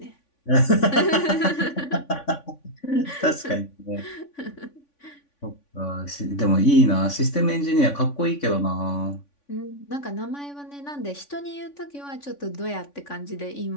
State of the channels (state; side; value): late; right; 3.5 ms